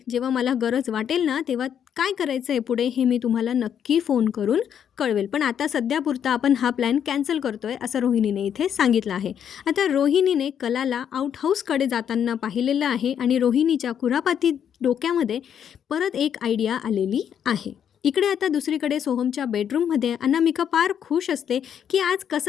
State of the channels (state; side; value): quieter; right; 8.7 dB